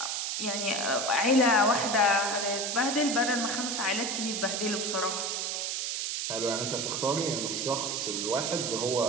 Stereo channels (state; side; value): noise; right; hiss, 1 dB below the sound